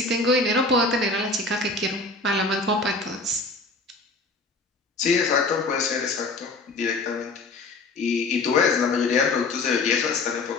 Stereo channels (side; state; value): right; quieter; 3.4 dB